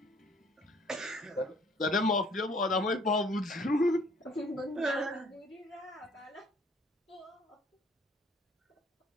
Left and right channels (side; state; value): both; normal; correlation 0.58